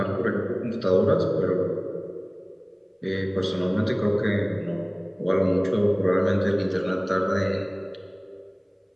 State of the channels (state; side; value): identical; both; correlation 1.00